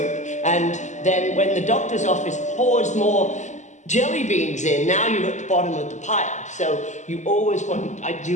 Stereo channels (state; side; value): late; right; 0.34 ms